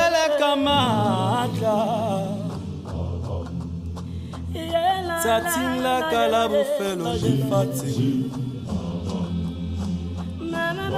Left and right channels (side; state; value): both; identical; correlation 1.00